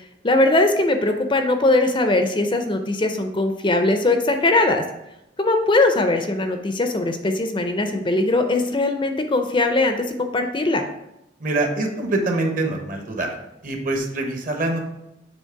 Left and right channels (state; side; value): normal; both; correlation 0.41